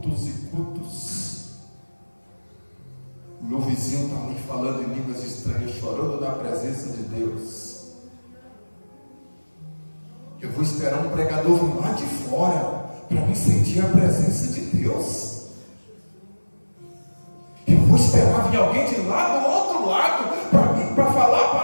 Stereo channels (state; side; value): inverted; both; correlation -1.00